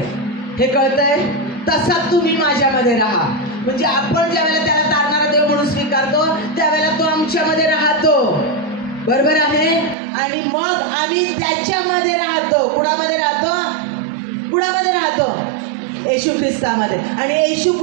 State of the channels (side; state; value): left; drops out; at 10.0 s